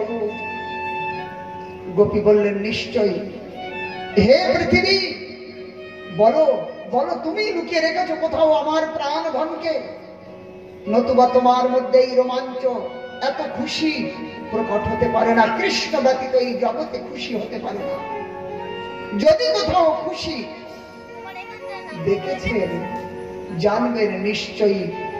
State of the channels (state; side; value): identical; both; correlation 1.00